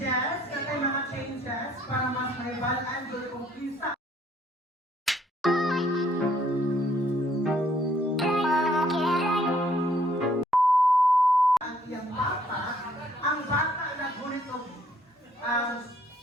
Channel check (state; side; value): normal; both; correlation 0.65